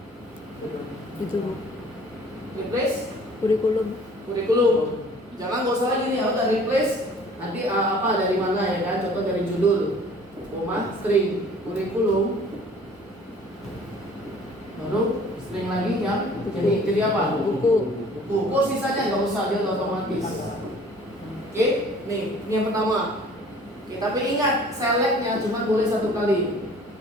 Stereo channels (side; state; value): both; normal; correlation 0.51